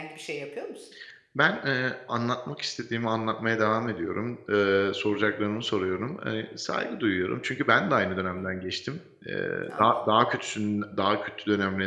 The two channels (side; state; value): both; identical; correlation 1.00